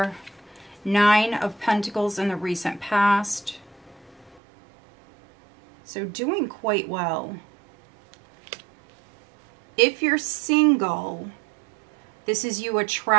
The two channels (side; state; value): left; drops out; at 4.4 s